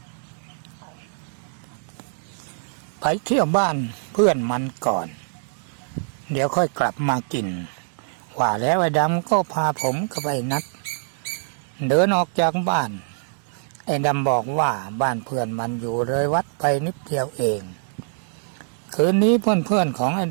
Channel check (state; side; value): silent; left; digital silence